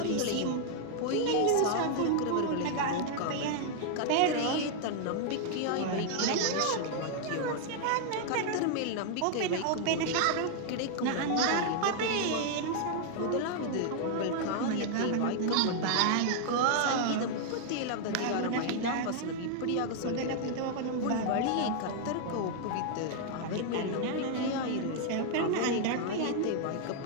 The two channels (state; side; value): different; both; correlation 0.00